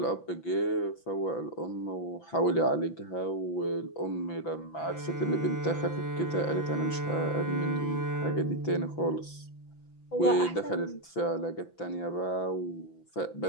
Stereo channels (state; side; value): late; right; 6.0 ms